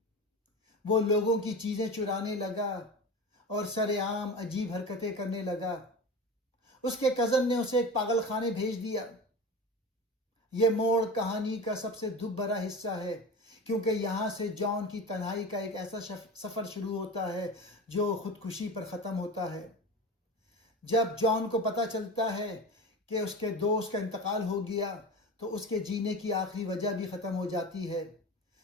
وہ لوگوں کی چیزیں چرانے لگا اور سر عام عجیب حرکتیں کرنے لگا. اس کے کزن نے اسے ایک پاگل خانے بھیج دیا. یہ موڑ کہانی کا سب سے دکھ بھرا حصہ ہے، کیونکہ یہاں سے جان کی تنہائی کا ایک ایسا سفر شروع ہوتا ہے جو خودکشی پر ختم ہوتا ہے. جب جان کو پتہ چلتا ہے کہ اس کے دوست کا انتقال ہو گیا تو اس کے جینے کی آخری وجہ بھی ختم ہو جاتی ہے.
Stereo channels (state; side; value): normal; both; correlation 0.30